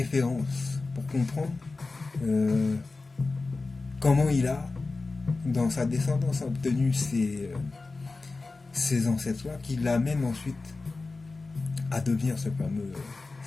pour comprendre comment il a, dans sa descendance, obtenu ces ancêtres-là, qui l'amènent ensuite à devenir ce fameux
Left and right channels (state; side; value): quieter; right; 3.7 dB